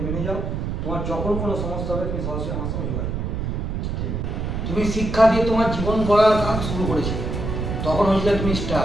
মেনে যাও। তোমার যখন কোনো সমস্যা হবে তুমি সরাসরি আমার সঙ্গে যোগাযোগ করো। তুমি শিক্ষা দিয়ে তোমার জীবন গড়ার কাজ শুরু করেছিলে, তখন হয়েছিল তুমি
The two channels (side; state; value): right; noise; rumble, 3 dB below the sound